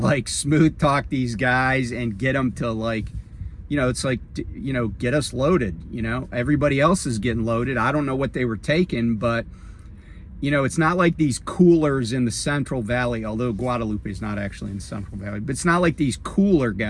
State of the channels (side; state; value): both; identical; correlation 1.00